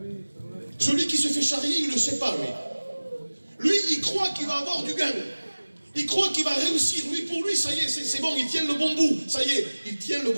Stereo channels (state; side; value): inverted; both; correlation -1.00